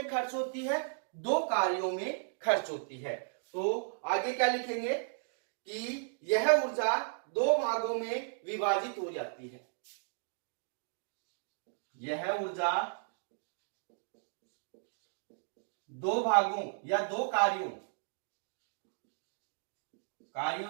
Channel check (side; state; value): left; silent; digital silence